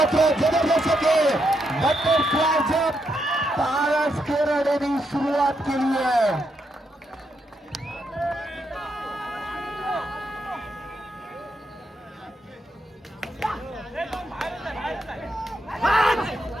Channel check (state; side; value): normal; both; correlation 0.80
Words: जबरदस्त बटरफ्लाय जंप पारस किराडेने सुरुवात केली आहे.